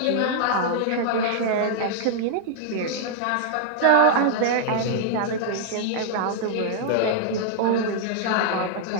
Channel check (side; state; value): both; different; correlation -0.01